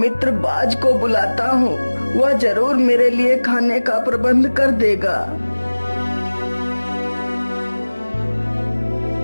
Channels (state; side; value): inverted; both; correlation -1.00